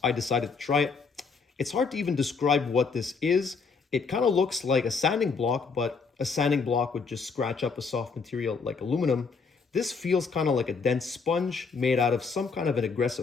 I decided to try it. It's hard to even describe what this is. It kind of looks like a sanding block, but a sanding block would just scratch up a soft material like aluminum. This feels kind of like a dense sponge made out of some kind of an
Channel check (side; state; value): right; quieter; 5.0 dB